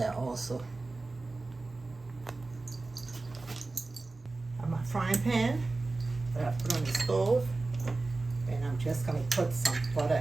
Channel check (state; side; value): quieter; left; 3.4 dB